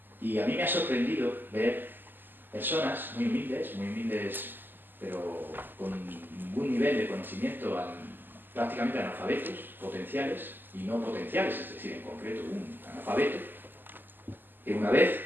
Y a mí me ha sorprendido ver personas muy humildes, pero con un buen nivel de conocimiento, prácticamente analfabetos, potenciales y no potenciales, es decir, en concreto un analfabeto, que una vez,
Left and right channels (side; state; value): left; late; 0.091 ms